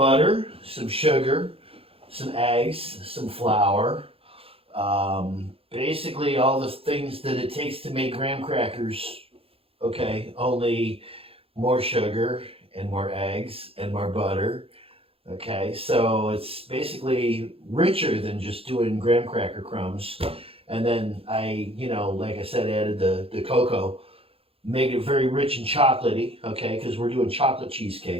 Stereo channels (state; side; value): late; left; 0.27 ms